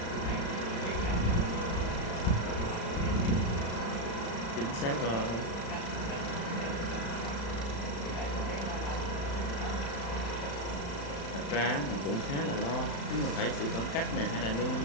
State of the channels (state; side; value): late; right; 35 ms